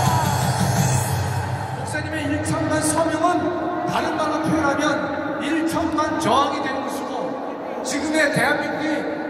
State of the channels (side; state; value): both; identical; correlation 1.00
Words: 목사님의 1천만 서명은 다른 말로 표현하면 1천만 저항이 되는 것이고, 지금의